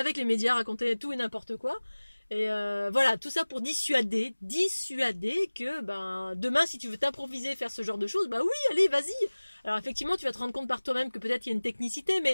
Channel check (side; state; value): both; inverted; correlation -1.00